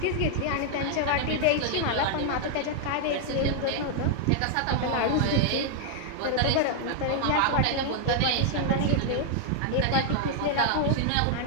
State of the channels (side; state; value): both; different; correlation 0.00